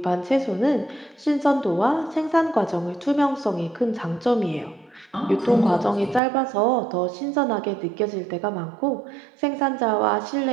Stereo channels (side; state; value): left; drops out; at 6.2 s